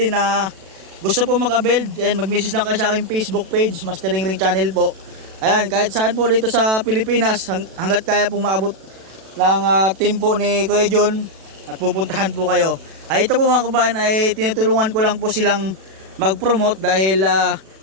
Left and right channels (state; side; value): late; left; 37 ms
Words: na gusto po mag-build, mag-message lang kayo sa aking Facebook page, Mastering Ring Channel po. Ayan, kahit saan po dito sa Pilipinas, hanggat kaya po maabot ng team po ni Kuya John at pupuntahan po kayo. Ito po mga kabayan ay tinutulungan ko lang po silang mag-promote dahil